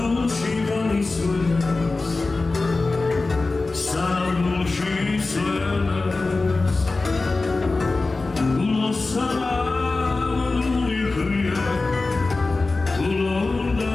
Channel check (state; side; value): quieter; right; 3.5 dB